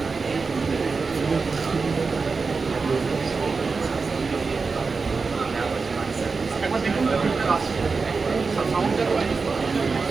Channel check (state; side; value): quieter; left; 4.5 dB